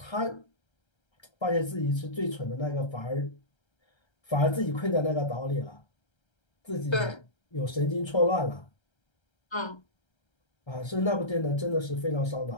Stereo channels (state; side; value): late; right; 1.3 ms